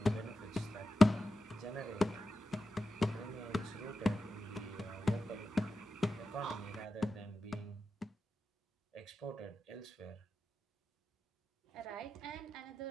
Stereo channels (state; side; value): normal; both; correlation 0.91